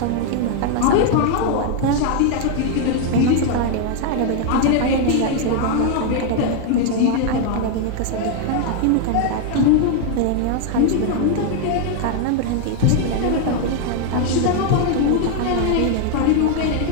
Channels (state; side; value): different; both; correlation 0.00